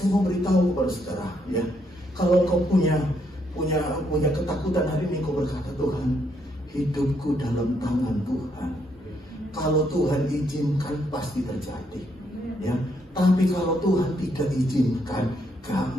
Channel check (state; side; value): normal; both; correlation 0.74